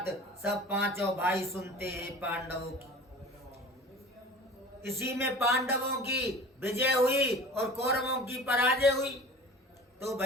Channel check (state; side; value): normal; both; correlation 0.40